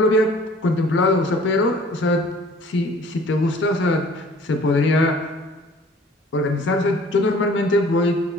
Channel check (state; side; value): normal; both; correlation 0.51